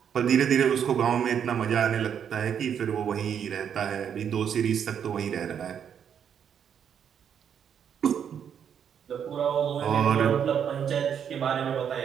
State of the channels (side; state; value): left; quieter; 8.2 dB